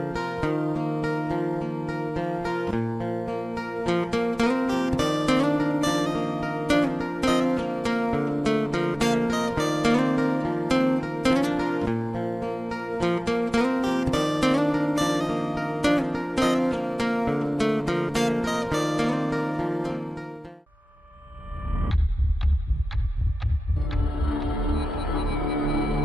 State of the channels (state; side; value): normal; both; correlation 0.96